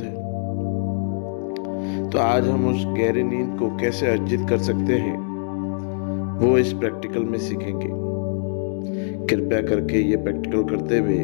है। तो आज हम उस गहरी नींद को कैसे अर्जित कर सकते हैं वो इस प्रैक्टिकल में सीखेंगे। कृपया करके ये प्रैक्टिकल करते हुए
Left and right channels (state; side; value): silent; right; digital silence